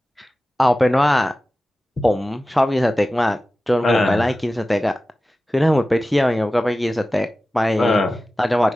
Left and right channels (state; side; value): normal; both; correlation 0.95